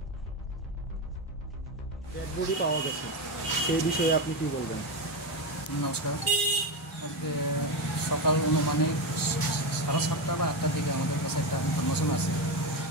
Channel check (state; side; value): normal; both; correlation 0.14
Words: dead body পাওয়া গেছে সেই বিষয়ে আপনি কি বলবেন? নমস্কার। আজকে সকাল মানে 7:30 বা 8টার দিকে আমাদের কাছে একটা ইনফরমেশন আছে